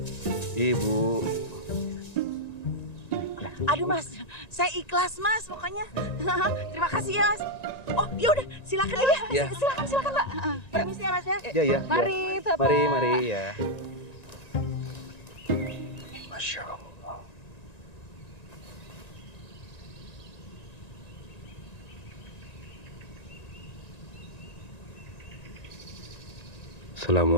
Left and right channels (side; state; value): right; late; 1.9 ms